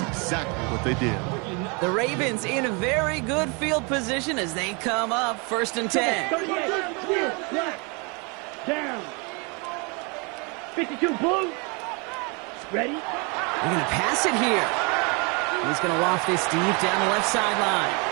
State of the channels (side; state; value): left; quieter; 31.6 dB